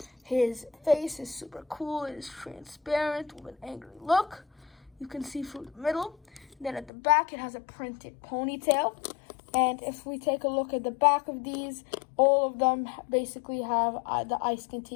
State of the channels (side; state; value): right; drops out; at 6.9 s